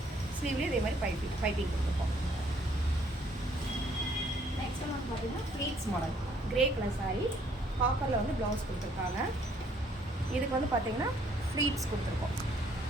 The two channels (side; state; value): both; normal; correlation 0.64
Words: ஸ்லீவ்லேயும் இதே மாதிரி பைப்பிங் கொடுத்துருக்கோம். நெக்ஸ்ட் வந்து பார்த்தீங்கன்னா pleats model grey colour sari, காப்பரில் வந்து ப்ளவுஸ் கொடுத்துருக்காங்க. இதுக்கு வந்து பார்த்தீங்கன்னா ஃப்ளீட்ஸ் கொடுத்துருக்கோம்.